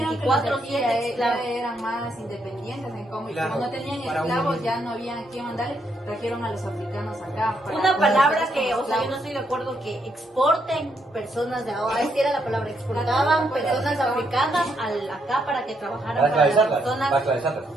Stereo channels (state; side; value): normal; both; correlation 0.76